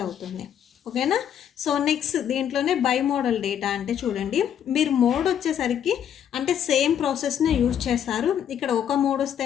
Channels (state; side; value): quieter; right; 9.4 dB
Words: అవుతుంది. ఓకేనా. సో నెక్స్ట్ దీంట్లోనే బై మోడల్ డేటా అంటే చూడండి, మీరు మోడ్ వచ్చేసరికి అంటే సేమ్ ప్రాసెస్ని యూజ్ చేస్తారు. ఇక్కడ ఒక మోడ్